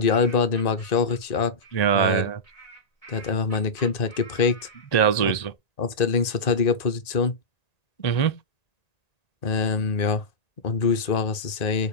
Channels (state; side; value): late; right; 1.9 ms